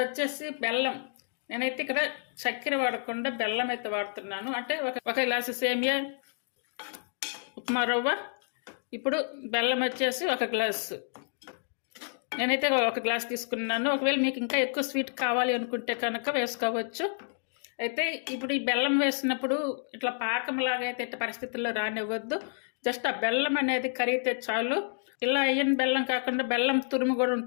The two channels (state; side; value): silent; right; digital silence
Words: వచ్చేసి బెల్లం. నేనైతే ఇక్కడ చక్కెర వాడకుండా బెల్లం అయితే వాడుతున్నాను. అంటే ఒక గ్లాసు సేమియా ఉప్మా రవ్వ, ఇప్పుడు బెల్లం వచ్చేసి 1 గ్లాసు. నేనైతే 1 గ్లాస్ తీసుకున్నాను. ఒకవేళ మీకు ఇంకా ఎక్కువ స్వీట్ కావాలి అనుకుంటే కనుక వేసుకోవచ్చు. అయితే ఇప్పుడు ఈ బెల్లం వేసినప్పుడు ఇట్లా పాకంలాగా అయితే ఇట్లా పరిస్థితుల్లో రానివ్వద్దు. జస్ట్ ఆ బెల్లం అనేది కరిగితే చాలు. ఇలా అయ్యని బెల్లం కాకుండా బెల్లం తురుము కూడా